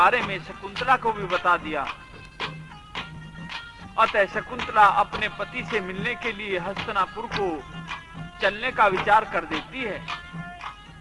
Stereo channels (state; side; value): identical; both; correlation 1.00